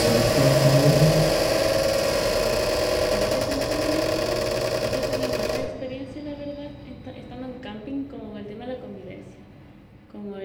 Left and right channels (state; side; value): identical; both; correlation 1.00